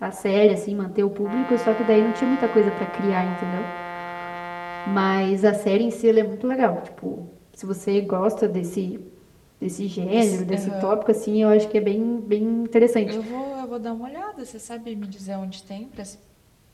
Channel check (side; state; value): both; identical; correlation 1.00